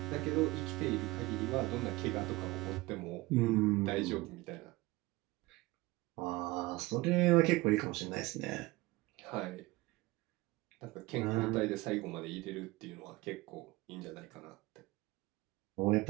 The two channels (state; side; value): quieter; left; 20.9 dB